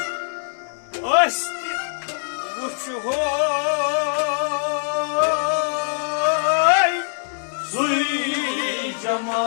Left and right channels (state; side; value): silent; right; 64 dB below the other